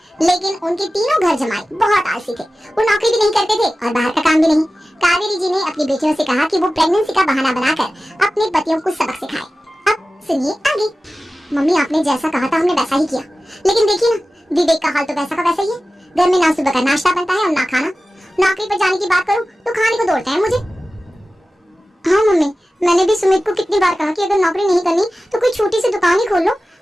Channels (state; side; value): normal; both; correlation 0.95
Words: लेकिन उनके तीनों घर जमाई बहुत आलसी थे। वो नौकरी भी नहीं करते थे और बाहर का काम भी नहीं। कावेरी जी ने अपनी बेटियों से कहा कि वो प्रेगनेंसी का बहाना बनाकर अपने पतियों को सबक सिखाए। अब सुनिए आगे। मम्मी, आपने जैसा कहा था हमने वैसा ही किया, लेकिन देखिए ना, विवेक का हाल तो वैसा का वैसा ही है। घर में ना सुबह का नाश्ता बनता है और ना खाना। नौकरी पर जाने की बात करूं तो खाने को दौड़ते हैं मुझे। हाँ मम्मी, मैंने भी सुमित को कितनी बार कहा कि अगर नौकरी नहीं करनी तो कोई छोटी सी दुकान ही खोल लो।